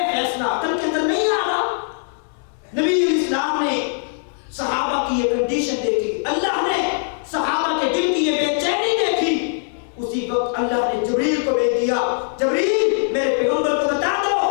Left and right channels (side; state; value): right; silent; 61 dB below the other